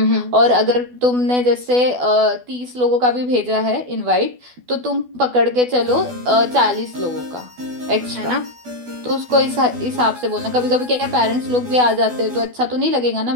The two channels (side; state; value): left; late; 12 ms